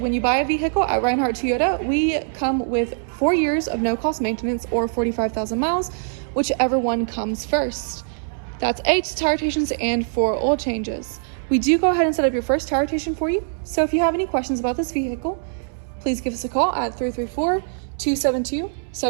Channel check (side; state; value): left; silent; 64 dB below the other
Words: you buy a vehicle at Reinhardt Toyota, we come with 4 years of no-cost maintenance or 45,000 miles, whichever one comes first. That's 8 tire rotations and 4 oil changes. We do go ahead and set up your first tire rotation for you. So if you have any questions about this vehicle, please give us a call at